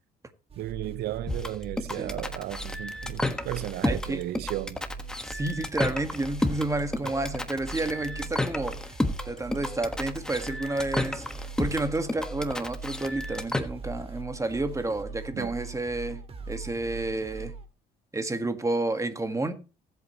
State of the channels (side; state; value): both; normal; correlation 0.74